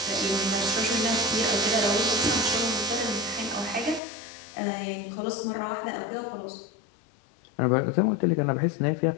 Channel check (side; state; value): right; drops out; at 4.0 s